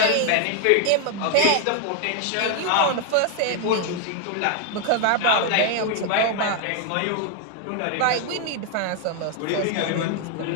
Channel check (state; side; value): different; both; correlation 0.00